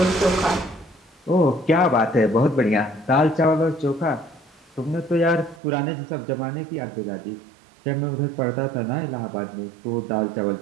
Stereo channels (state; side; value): drops out; left; at 5.6 s